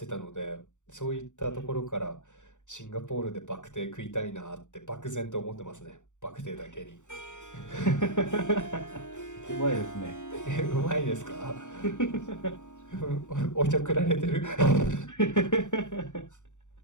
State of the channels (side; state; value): right; late; 0.85 ms